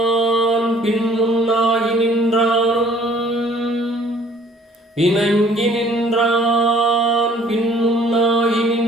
பின் முன்னாகி நின்றானும், இணங்கி நின்றான் பின் முன்னாகி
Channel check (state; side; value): normal; both; correlation 0.56